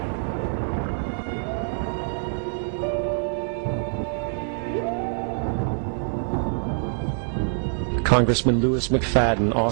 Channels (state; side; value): silent; left; digital silence